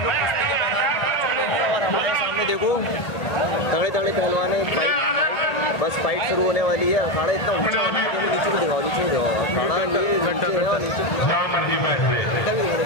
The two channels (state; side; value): late; right; 1.8 ms